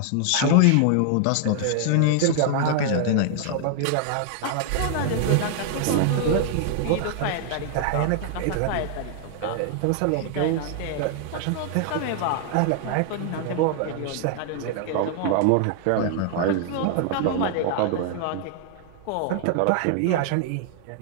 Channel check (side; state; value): both; different; correlation 0.00